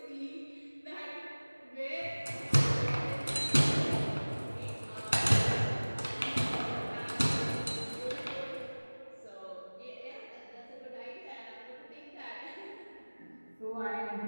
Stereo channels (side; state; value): both; inverted; correlation -1.00